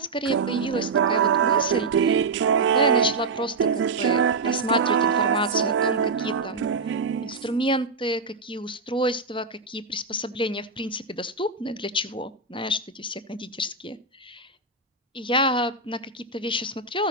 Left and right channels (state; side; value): quieter; left; 4.0 dB